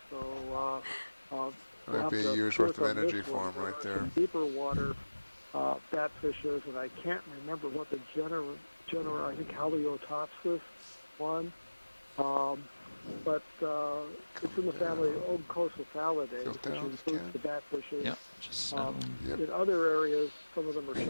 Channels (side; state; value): both; inverted; correlation -1.00